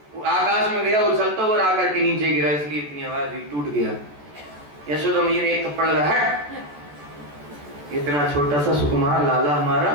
आकाश में गया उछलता हुआ, आकर के नीचे गिरा, इसलिए इतनी आवाज हुई, टूट गया। यशोदा मैया ने एक थप्पड़ लगा, हट, इतना छोटा सा सुकुमार लाला हमारा,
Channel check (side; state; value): left; late; 14 ms